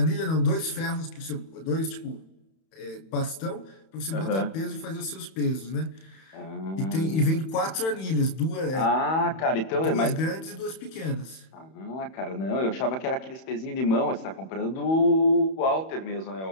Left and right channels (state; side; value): late; right; 31 ms